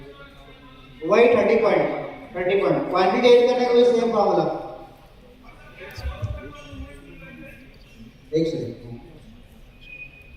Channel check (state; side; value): identical; both; correlation 1.00